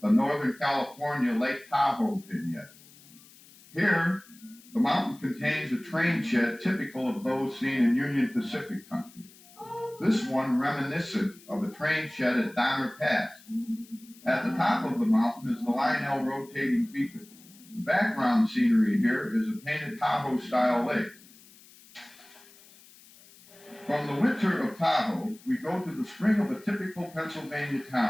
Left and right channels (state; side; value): noise; left; hiss, 24 dB below the sound